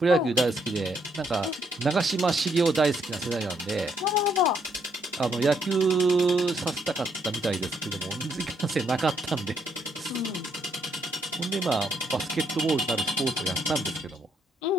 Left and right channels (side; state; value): both; normal; correlation 0.73